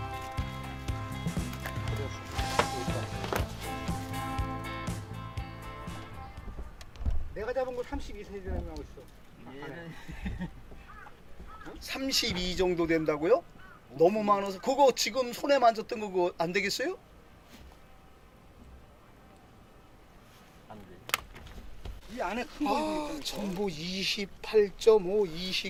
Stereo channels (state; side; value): identical; both; correlation 1.00